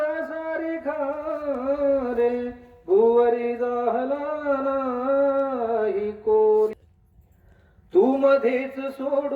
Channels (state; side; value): identical; both; correlation 1.00